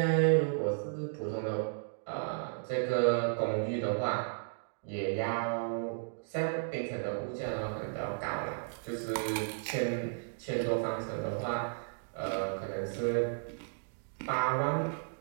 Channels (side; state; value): left; silent; digital silence